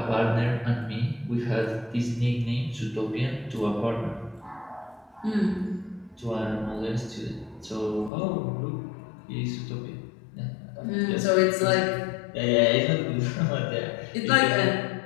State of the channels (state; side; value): drops out; right; at 8.1 s